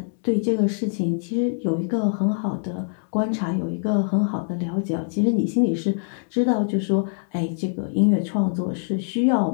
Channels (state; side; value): silent; right; 62 dB below the other